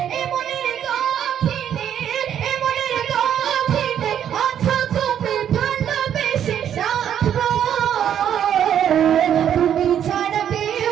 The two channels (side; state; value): left; quieter; 9.6 dB